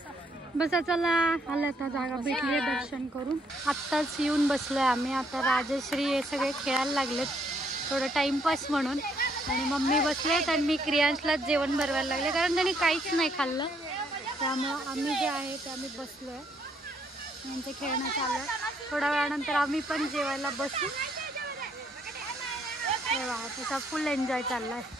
बस चला आलं आता जागा भेटली दर्शन करून. आत्ताच येऊन बसलोय आम्ही. आता राजश्री हे सगळे खेळायला लागलेत थोडं टाइमपास म्हणून आणि मम्मी बसलेत आणि मी क्रियांशला जेवण बनवायला लागले कारण त्यांनी काहीच नाही खाल्लं. त्यामुळं आम्ही जे आहे ते आम्ही बसलोय. यांचं खेळणं चालू आहे. थोड्या वेळानंतर आम्ही पण जेवायला बसू. त्याचा फुल एन्जॉय चाललाय.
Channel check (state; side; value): normal; both; correlation 0.70